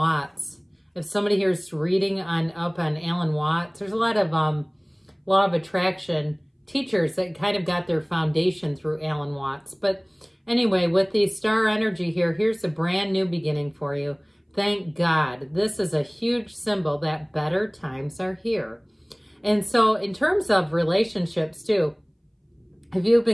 If somebody here is reading up on Alan Watts, there's a lot of law of attraction teachers that kind of got their foundation through Alan Watts. But anyway, with the star energy here, here's a brand new beginning for you. Thank God. This is a huge symbol that better times are here. And so in terms of relationships too, if you've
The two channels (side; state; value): both; identical; correlation 1.00